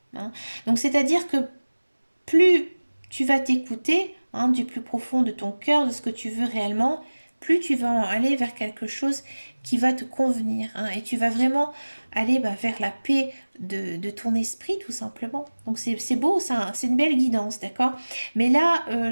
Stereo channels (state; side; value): inverted; both; correlation -1.00